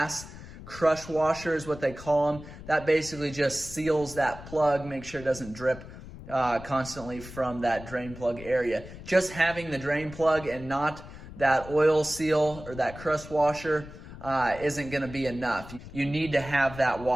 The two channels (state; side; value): noise; left; rumble, 15 dB below the sound